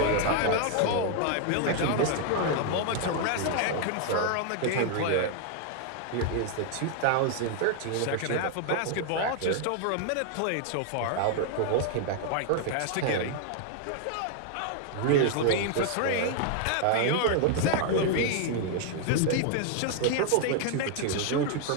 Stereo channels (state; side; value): different; both; correlation 0.00